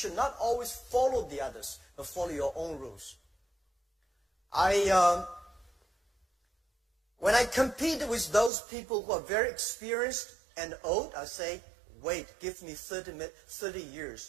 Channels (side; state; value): left; drops out; at 8.5 s